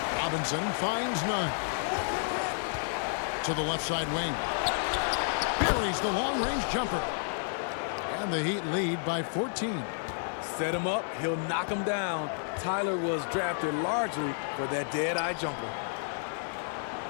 Robinson finds none. To the left side wing. Buries the long-range jumper. And the Heat lead by 14. Set him up, he'll knock him down. Tyler was drafted largely for that dead-eye jumper.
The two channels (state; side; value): silent; right; digital silence